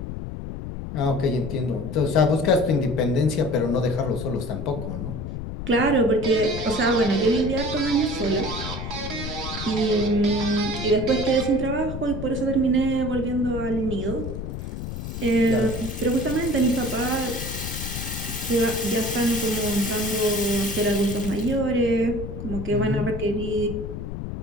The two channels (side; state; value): left; noise; rumble, 7 dB below the sound